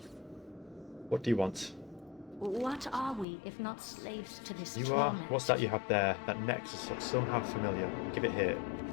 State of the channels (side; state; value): right; drops out; at 3.2 s